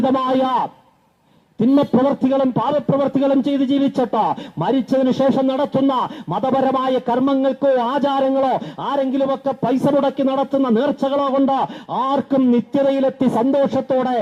തിന്മപ്രവർത്തികളും പാപപ്രവർത്തികളും ചെയ്ത് ജീവിച്ചിട്ട് മരിച്ചതിന് ശേഷം നടത്തുന്ന മതപരമായ കർമ്മങ്ങൾക്കോ ആചാരങ്ങളോ ആരെങ്കിലുമൊക്കെ പൈസ മുടക്കി നടത്തുന്ന നേർച്ചകളോ കൊണ്ട് ആർക്കും നിത്യതയിലെത്തി സന്തോഷത്തോടെ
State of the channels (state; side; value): identical; both; correlation 1.00